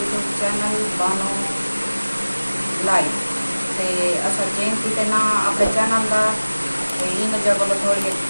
चैनल बानो लाइव ते असल चेंज की ना अपने चैनल का इन जगह पर थोड़ी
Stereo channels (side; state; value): both; inverted; correlation -1.00